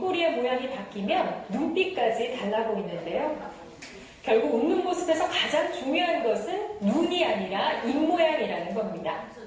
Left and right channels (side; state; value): both; identical; correlation 1.00